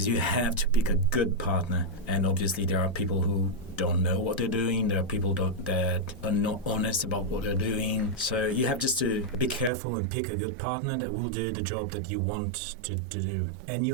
you have to pick a good partner. And obviously there are people who don't know what they're doing. There are people that are not honest about what they're doing. So you have just to be careful and pick a good partner that will do the job that you want to do. And you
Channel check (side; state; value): left; drops out; at 9.7 s